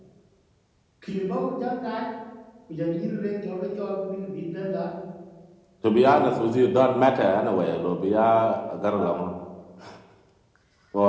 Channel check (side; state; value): both; identical; correlation 1.00